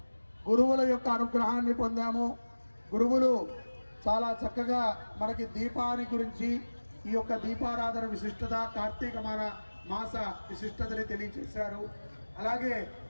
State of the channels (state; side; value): inverted; both; correlation -1.00